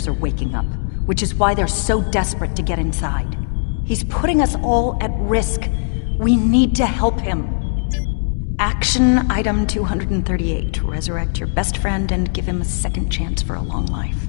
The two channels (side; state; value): right; silent; digital silence